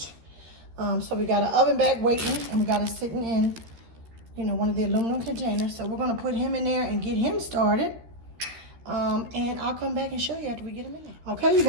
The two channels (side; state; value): left; late; 13 ms